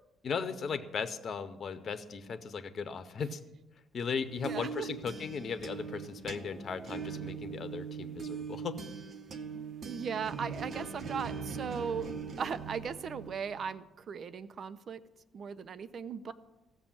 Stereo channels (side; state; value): both; normal; correlation 0.63